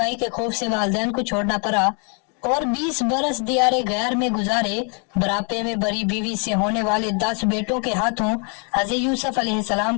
کے خوف سے والدین کو چھوڑنا پڑا اور 20 برس دیار غیر میں گزارے۔ بڑھاپے میں بڑی بیوی سے ہونے والے 10 بیٹوں کے ہاتھوں حضرت یوسف علیہ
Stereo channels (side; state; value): right; quieter; 37.9 dB